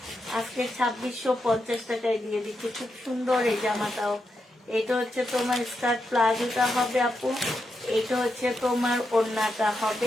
আজকে 2650 টাকায় দিয়ে দিচ্ছি। খুব সুন্দর এই জামাটাও। এটা হচ্ছে তোমার স্কার্ট প্লাজোটা হবে আপু, এইটা হচ্ছে তোমার ওড়নাটা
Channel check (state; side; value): normal; both; correlation 0.85